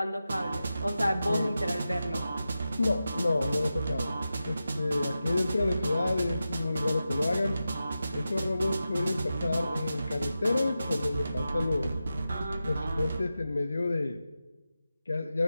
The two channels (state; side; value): inverted; both; correlation -0.91